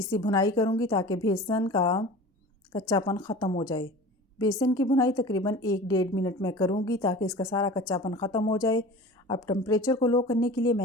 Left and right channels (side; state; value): both; normal; correlation 0.38